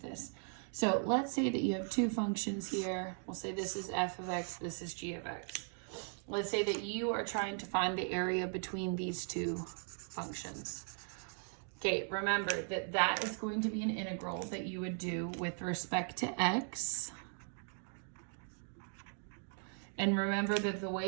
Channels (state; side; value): silent; left; 52 dB below the other